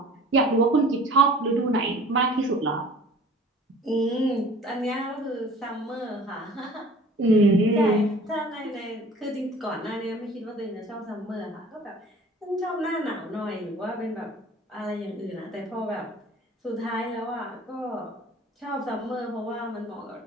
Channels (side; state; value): both; normal; correlation 0.47